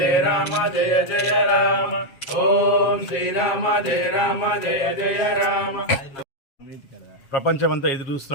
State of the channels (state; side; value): late; right; 7.4 ms